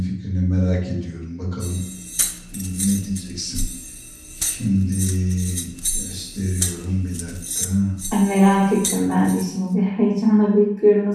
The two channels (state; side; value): identical; both; correlation 1.00